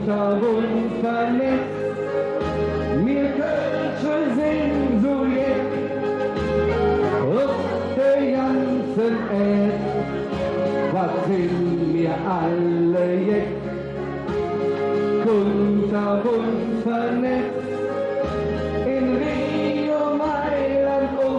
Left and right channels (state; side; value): identical; both; correlation 1.00